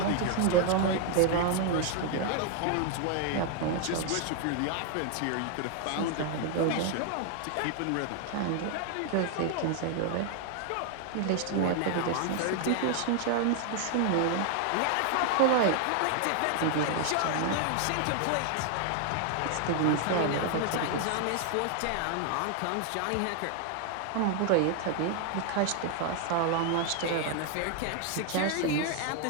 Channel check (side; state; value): both; different; correlation 0.00